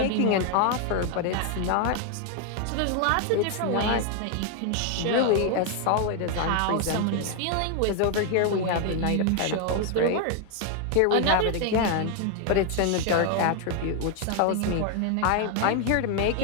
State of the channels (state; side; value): different; both; correlation 0.01